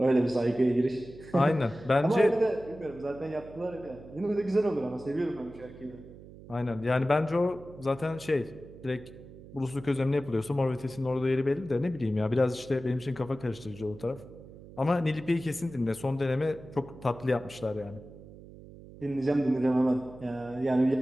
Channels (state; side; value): noise; right; hum, 18 dB below the sound